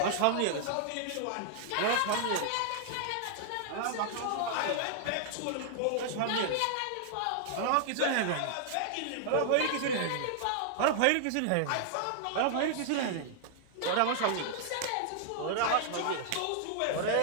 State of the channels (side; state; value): both; different; correlation -0.01